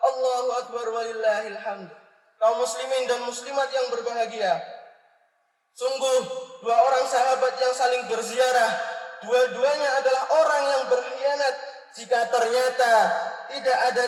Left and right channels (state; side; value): identical; both; correlation 1.00